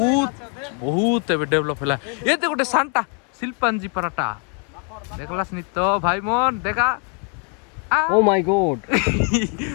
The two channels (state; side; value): quieter; right; 38.6 dB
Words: बहुत एबे डेवलप हैला ये ते गोटे सांता शिल्पांजी पराटा देखलास नि तो भाई मन देखा ओ माय गॉड